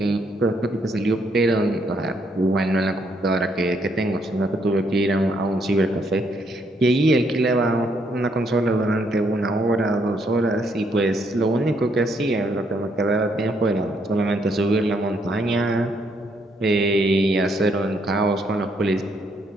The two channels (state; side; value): normal; both; correlation 0.72